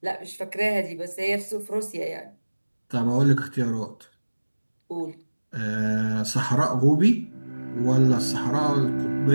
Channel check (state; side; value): inverted; both; correlation -1.00